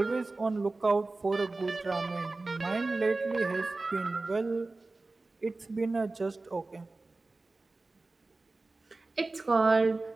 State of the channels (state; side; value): quieter; left; 3.3 dB